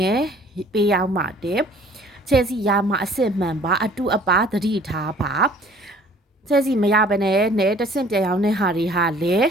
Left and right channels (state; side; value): normal; both; correlation 0.53